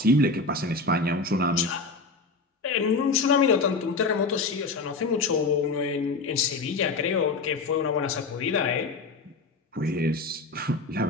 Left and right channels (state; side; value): quieter; right; 3.8 dB